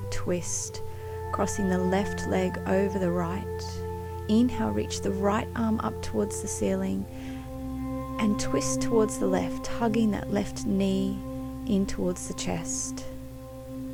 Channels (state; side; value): identical; both; correlation 1.00